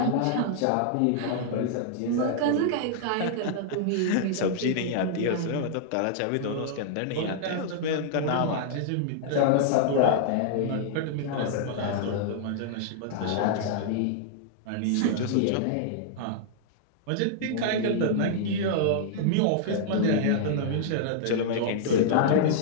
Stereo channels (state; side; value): different; both; correlation -0.01